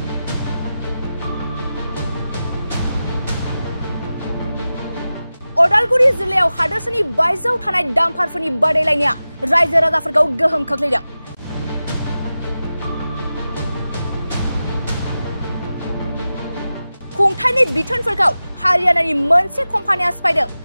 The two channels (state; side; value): inverted; both; correlation -0.94